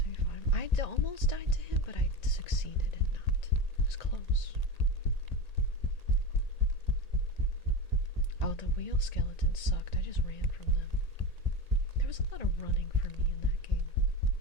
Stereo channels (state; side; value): late; right; 1.8 ms